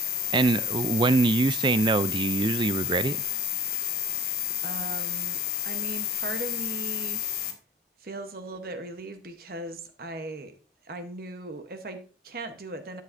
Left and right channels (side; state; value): both; normal; correlation 0.42